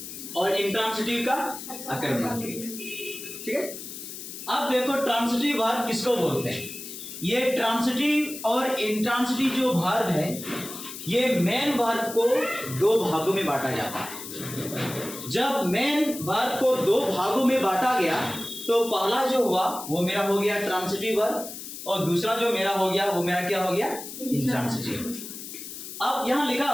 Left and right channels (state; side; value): noise; left; hiss, 10 dB below the sound